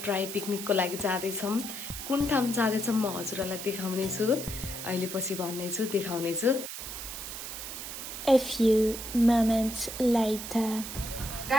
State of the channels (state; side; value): noise; right; hiss, 8 dB below the sound